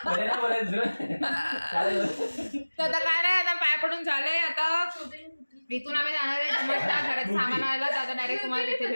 बोलायचं. तर आता काय नाही, आता पाय पडून झालंय. आता इथून आम्ही जाणार आहे घरात सामान आणायला. आता डायरेक्ट तुम्हाला तिथे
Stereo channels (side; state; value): both; inverted; correlation -1.00